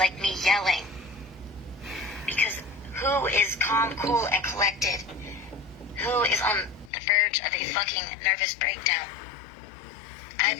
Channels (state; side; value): drops out; right; at 6.9 s